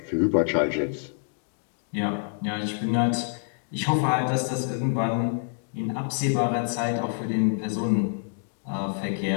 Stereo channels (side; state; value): right; silent; digital silence